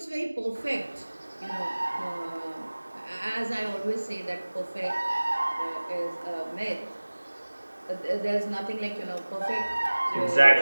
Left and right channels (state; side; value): inverted; both; correlation -1.00